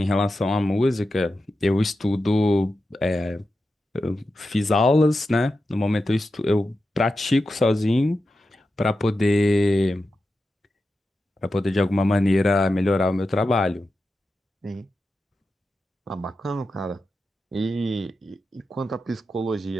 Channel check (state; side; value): normal; both; correlation 0.91